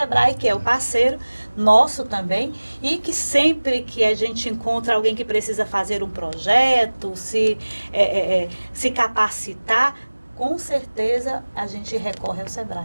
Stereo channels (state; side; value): inverted; both; correlation -1.00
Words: que é o parceiro nosso também, e que sempre que a gente encontra alguém que precisa fazer um projeto, se capacitar, com certeza a gente recorre ao